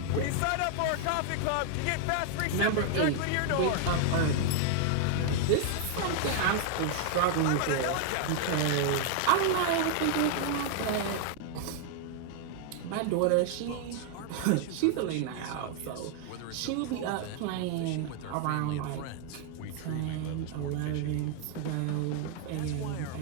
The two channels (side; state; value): both; different; correlation 0.00